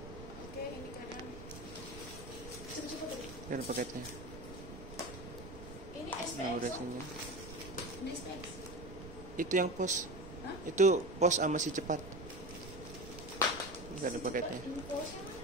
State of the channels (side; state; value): right; noise; rumble, 13 dB below the sound